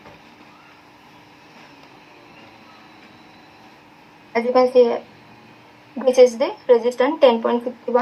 As you can see, this is the resistance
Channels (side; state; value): both; identical; correlation 1.00